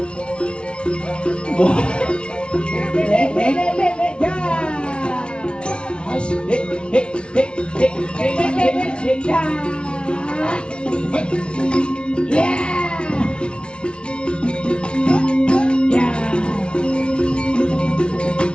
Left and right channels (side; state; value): right; late; 0.058 ms